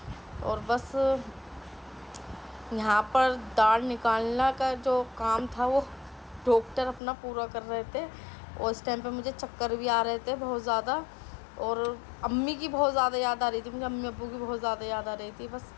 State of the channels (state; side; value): drops out; right; at 7.0 s